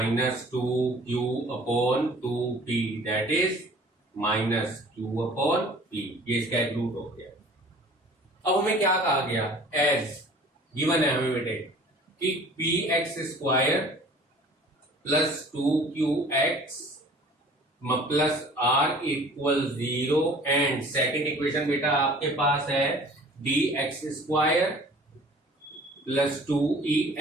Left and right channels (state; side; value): normal; both; correlation 0.48